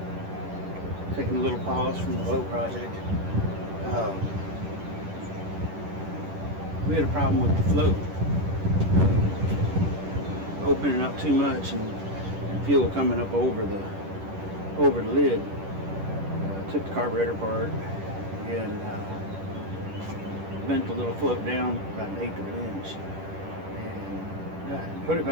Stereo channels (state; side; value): late; left; 10 ms